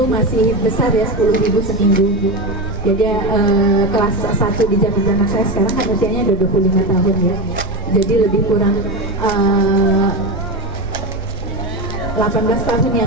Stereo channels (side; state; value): right; noise; rumble, 10 dB below the sound